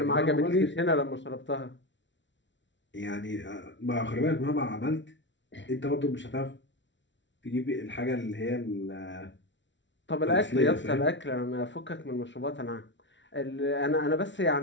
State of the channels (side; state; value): right; late; 0.54 ms